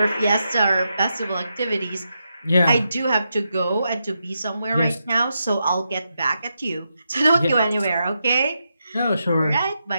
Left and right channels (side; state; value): both; inverted; correlation -0.85